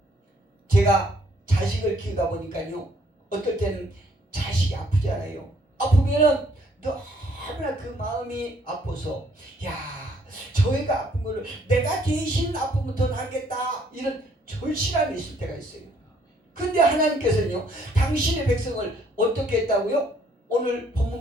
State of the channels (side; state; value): both; normal; correlation 0.65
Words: 제가 자식을 키우다 보니까요, 어떨 때는 자식이 아프지 않아요. 아프면은 너무나 그 마음이 아파서, 야, 저 애가 아픈 거를 내가 대신 아프면 더 낫겠다, 이런 절실함이 있을 때가 있어요. 근데 하나님께서는요, 당신의 백성을 어떻게 했다고요? 오늘 본문